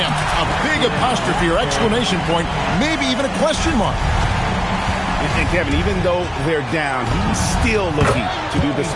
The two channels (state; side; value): identical; both; correlation 1.00